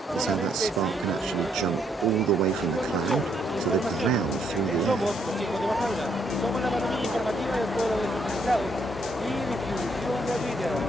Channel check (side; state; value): both; normal; correlation 0.72